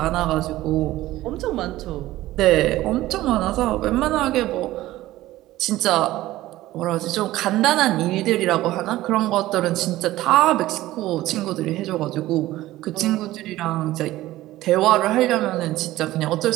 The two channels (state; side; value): quieter; left; 16.2 dB